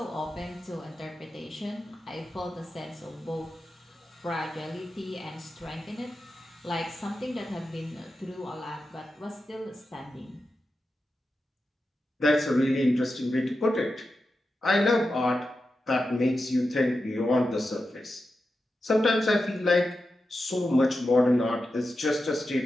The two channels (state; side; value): normal; both; correlation 0.90